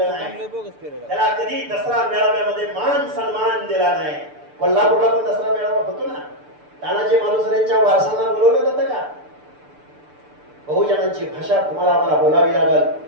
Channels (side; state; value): left; late; 6.8 ms